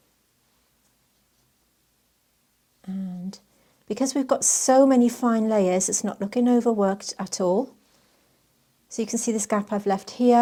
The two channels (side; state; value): both; identical; correlation 1.00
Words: And because we've got so many fine layers, it's not looking overworked at all. So you can see this gap I've left